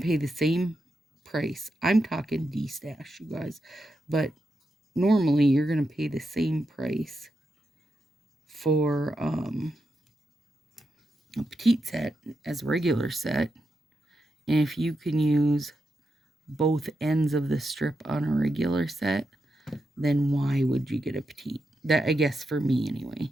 pay the same price. I'm talking D-stash, you guys. But normally, you're going to pay the same price for a petite set as a regular set. And if you can use both ends of the strip on a regular set, then why would you get a petite? That, I guess, for me anyway.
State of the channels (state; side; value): normal; both; correlation 0.86